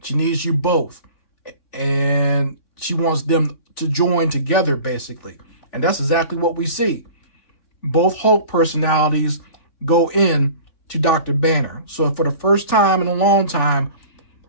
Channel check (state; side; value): late; right; 3.4 ms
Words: She needs you both. And she wants them to join together, basically. And that's exactly what we see. Both Hulk personalities go in to Dr. Banner. So for the first time in a long time,